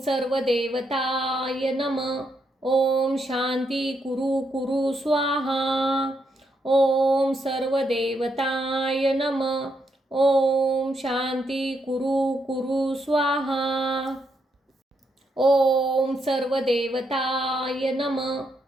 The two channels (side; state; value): both; normal; correlation 0.79